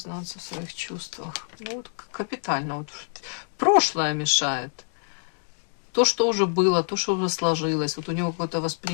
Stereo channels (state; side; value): silent; right; 61 dB below the other